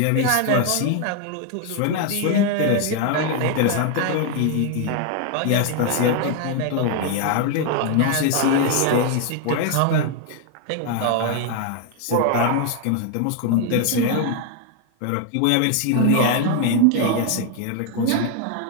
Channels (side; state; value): both; different; correlation 0.00